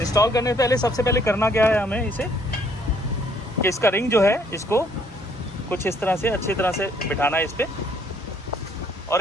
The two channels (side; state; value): both; normal; correlation 0.65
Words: करने से पहले सबसे पहले करना क्या है हमें इसे, कि इसका रिंग जो है इसको कुछ इस तरह से अच्छी तरह से बिठाना है इस पर,